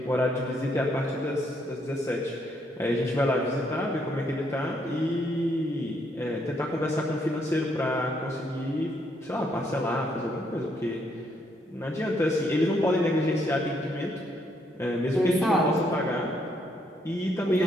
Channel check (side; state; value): both; normal; correlation 0.73